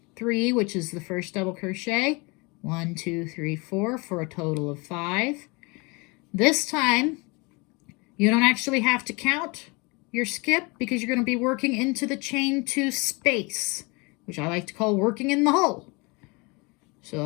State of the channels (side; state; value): right; quieter; 27.8 dB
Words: 3, which is the first double crochet. 1, 2, 3, 4 for a total of 5. This time, you don't actually have to count your skip because you're going to be working into the chain 2 space, which I like to call working in the hole.